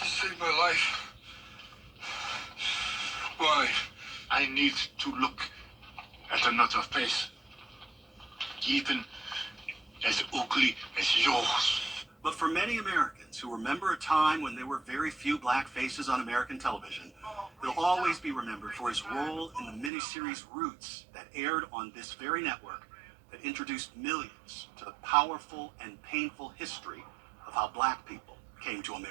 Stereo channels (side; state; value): left; drops out; at 19.9 s